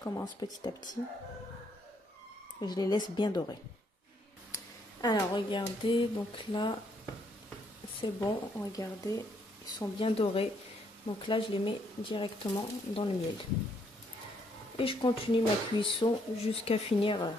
petit à petit. Et je les laisse bien dorer. Alors, regardez, donc là, c'est bon, regardez, ils sont bien dorés. Donc là, je les mets directement dans le miel. Et je continue ma cuisson jusqu'à finir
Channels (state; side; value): normal; both; correlation 0.71